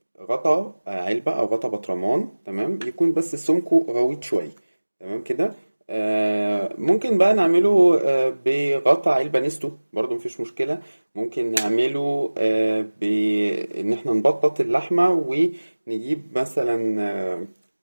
غطا علبة أو غطا برطمان، تمام، يكون بس سمكه غويط شوية، تمام كده. ممكن بقى نعمله بغطا علبة نستو، برضو مفيش مشكلة. ممكن نعمله بإن احنا نبطط اللحمة ونجيب مثلا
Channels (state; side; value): inverted; both; correlation -1.00